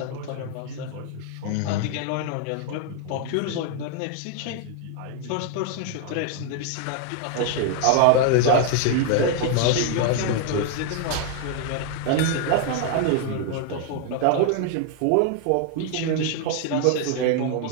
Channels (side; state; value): both; different; correlation 0.00